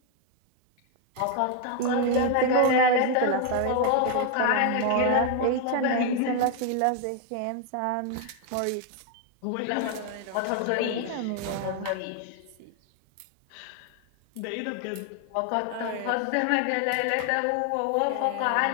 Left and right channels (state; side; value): different; both; correlation 0.00